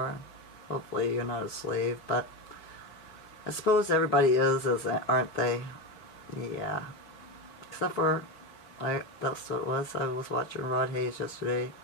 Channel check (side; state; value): right; late; 4.9 ms